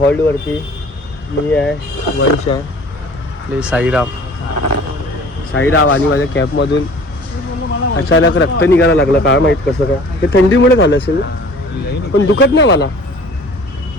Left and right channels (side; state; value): both; normal; correlation 0.48